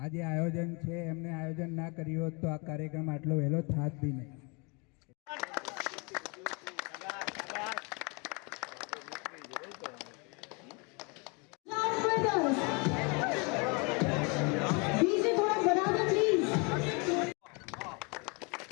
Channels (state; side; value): quieter; right; 31.3 dB